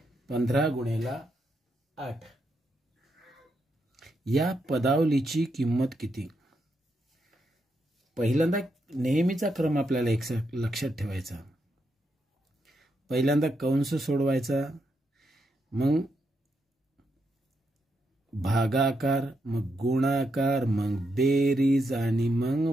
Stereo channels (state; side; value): normal; both; correlation 0.81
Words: 15 गुणेला 8 या पदावलीची किंमत किती. पहिल्यांदा नेहमीचा क्रम आपल्याला एक लक्षात ठेवायचा. पहिल्यांदा कंस सोडवायचा, मग भागाकार, मग गुणाकार, मग बेरीज आणि